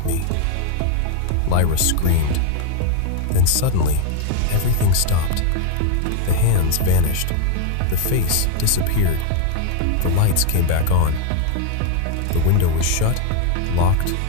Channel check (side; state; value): both; different; correlation 0.01